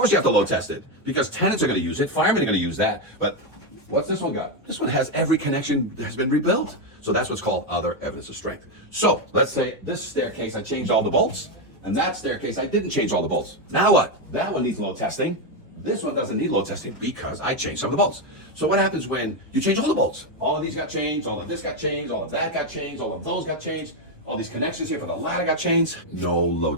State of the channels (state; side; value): normal; both; correlation 0.06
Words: you have to load test it, because tenants are going to use it, firemen are going to use that, but what's this one got? This one has every connection that has been rebuilt. So that's what's called other evidence of strength. So let's say this staircase, I changed all the bolts, and that staircase, I didn't change all the bolts. Now what? That one needs load testing. This one doesn't need load testing because I changed some of the bolts. So what happens when you change all the bolts? All of these got changed, all of this got changed, all of that got changed, all of those got changed, all these connections here for the ladder got changed. No